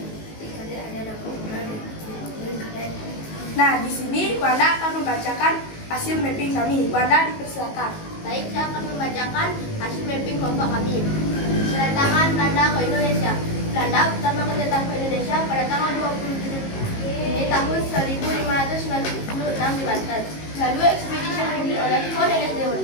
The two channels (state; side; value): late; right; 19 ms